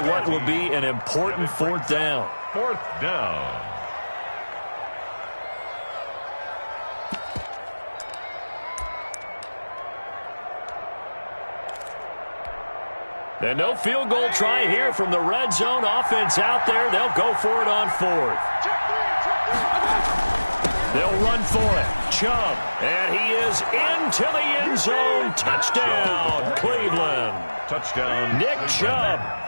what will be an important 4th down. 4th down. And no field goal try here from the red zone. Offense out there. They'll go for it on 4th. They'll run for it. Chubb. And he is into the end zone. Touchdown, Cleveland. Touchdown. Nick Chubb.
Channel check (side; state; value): both; inverted; correlation -1.00